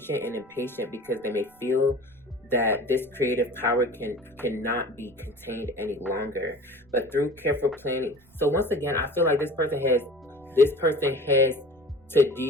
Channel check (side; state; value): right; noise; rumble, 29 dB below the sound